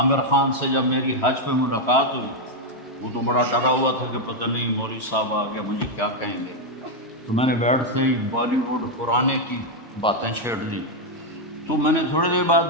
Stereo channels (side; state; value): both; normal; correlation 0.01